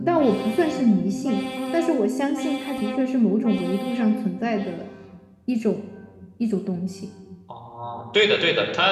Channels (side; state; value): both; identical; correlation 1.00